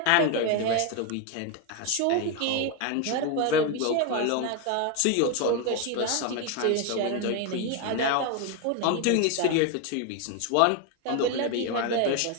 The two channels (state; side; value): different; both; correlation 0.02